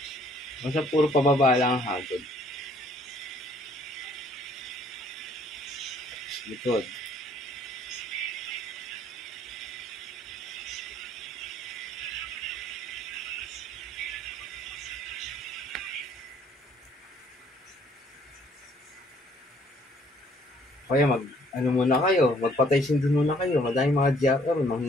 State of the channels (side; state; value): both; normal; correlation 0.61